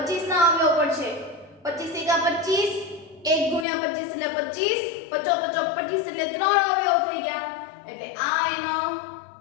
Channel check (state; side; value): drops out; right; at 3.7 s